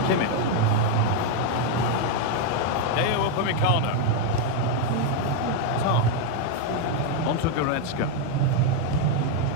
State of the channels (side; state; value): both; different; correlation 0.01